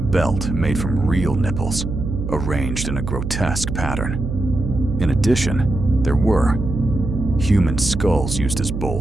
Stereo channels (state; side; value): noise; right; hum, 4 dB below the sound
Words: made from real nipples, arranged in a grotesque pattern. In addition, there were human skulls used as